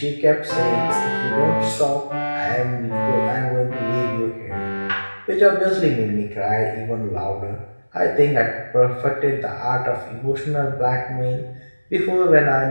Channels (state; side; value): inverted; both; correlation -1.00